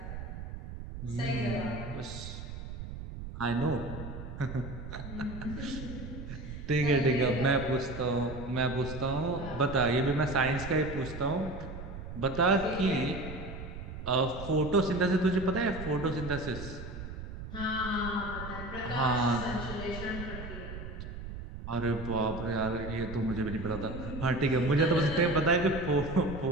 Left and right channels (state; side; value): noise; right; rumble, 9 dB below the sound